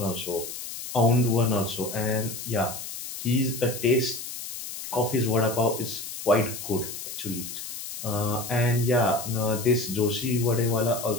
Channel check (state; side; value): noise; left; hiss, 9 dB below the sound